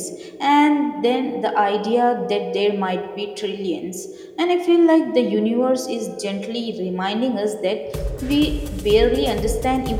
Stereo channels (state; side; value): identical; both; correlation 1.00